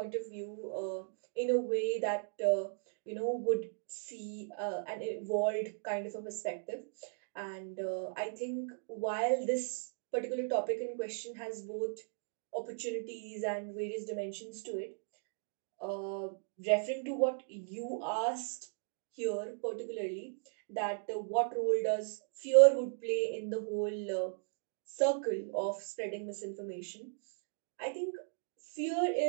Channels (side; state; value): left; silent; digital silence